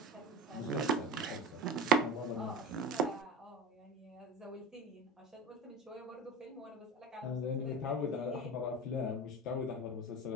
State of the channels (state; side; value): normal; both; correlation 0.30